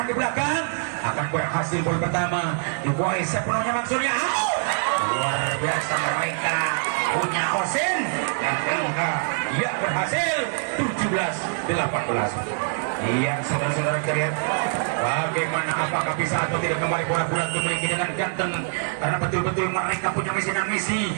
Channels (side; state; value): left; silent; 62 dB below the other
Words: di belakang, akan berhasil gol pertama dikuasai sepenuhnya maksudnya. Luar biasa mereka punya Osen dan angka ya berhasil 17-18. Iya saudara-saudara kalian, bagaimana apakah bisa atau tidak kembali bola-bola dimiliki dengan ganteng karena betul-betul mereka punya misi dan misi